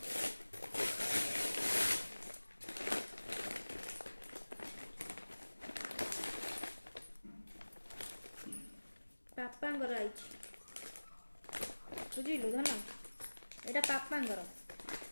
पापांगर आई बुझिलु धन एटा पापांगर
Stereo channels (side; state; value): both; inverted; correlation -1.00